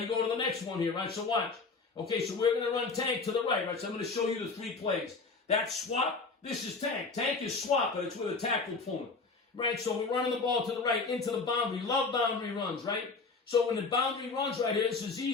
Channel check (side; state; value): right; quieter; 4.2 dB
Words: go to the next one here, right? So watch. Okay, so we're going to run tank to the right, right? So I'm going to show you the 3 plays. That swap, this is tank. Tank is swap, but it's with a tackle pulling. Right, so we're running the ball to the right, into the boundary. Love boundary runs, right? So when the boundary runs right here, this is